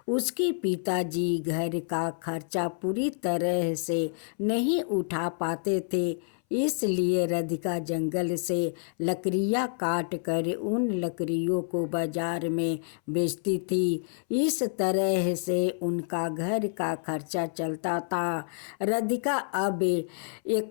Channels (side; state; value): right; silent; 59 dB below the other